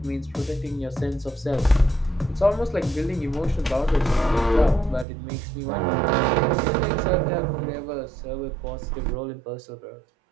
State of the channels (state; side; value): drops out; left; at 5.1 s